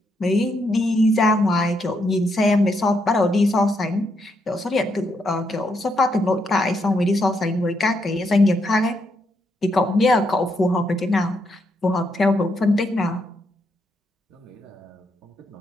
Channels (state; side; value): normal; both; correlation 0.78